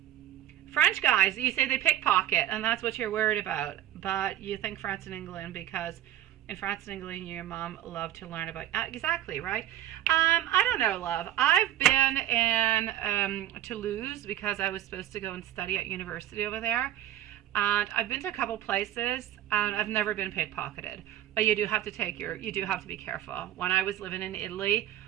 French guys, you say they pickpocket, and that's what you're worried about. But you think France and England because in France and England, your mom loved to learn about... exactly, right? I don't know, love. I've been in Toulouse because I was supposed to go and study at university over there. And I've been to a couple places, and I've never been pickpocketed. But you do have to be careful. When I was living in Italy,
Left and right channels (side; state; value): left; quieter; 12.3 dB